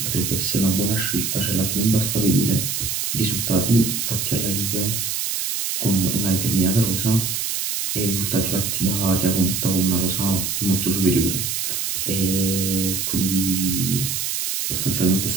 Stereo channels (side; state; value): right; noise; hiss, 1 dB below the sound